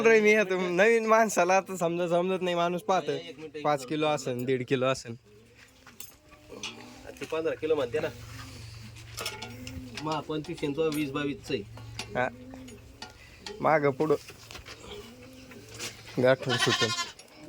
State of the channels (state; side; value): identical; both; correlation 1.00